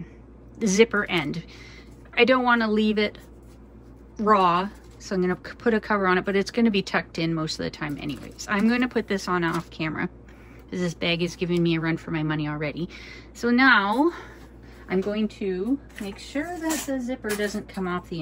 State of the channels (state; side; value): identical; both; correlation 1.00